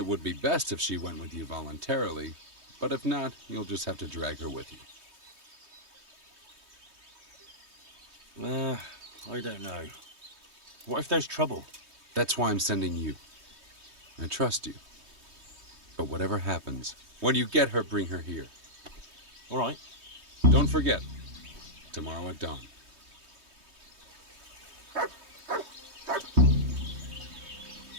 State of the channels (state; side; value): late; left; 3.2 ms